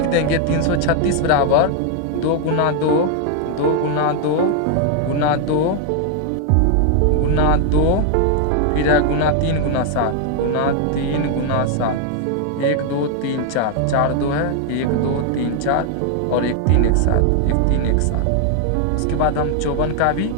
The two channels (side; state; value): both; different; correlation 0.00